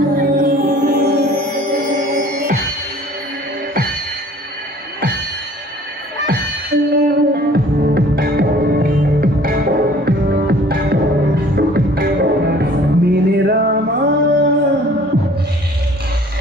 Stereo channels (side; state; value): both; normal; correlation 0.52